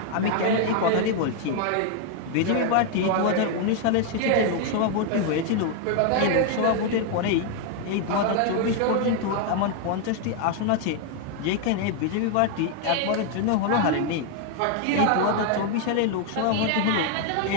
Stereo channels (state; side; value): different; both; correlation 0.00